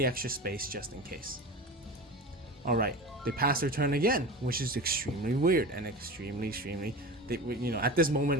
extra space just in case. All right, they pass their turn again, which is extremely weird and extremely you know, at this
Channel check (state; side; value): normal; both; correlation 0.30